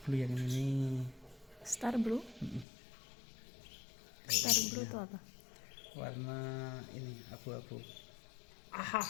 Blue yang ini. Star Blue? Star Blue itu apa? Warna ini abu-abu.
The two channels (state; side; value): drops out; right; at 2.7 s